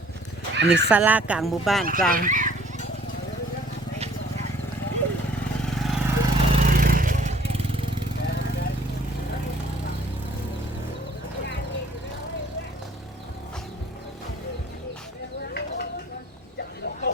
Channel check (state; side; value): normal; both; correlation 0.57